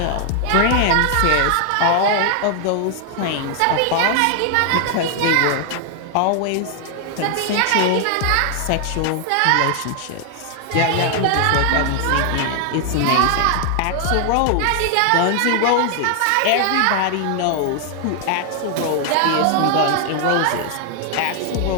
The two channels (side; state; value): both; different; correlation 0.00